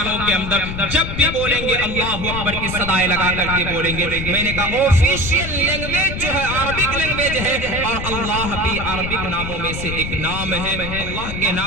کے اندر جب بھی بولیں گے اللہ اکبر کی صدائیں لگا کر کے بولیں گے۔ میں نے کہا آفیشیل لینگویج جو ہے عربک لینگویج ہے، اور اللہ بھی عربک ناموں میں سے ایک نام ہے، اللہ کے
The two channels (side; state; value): left; noise; rumble, 6 dB below the sound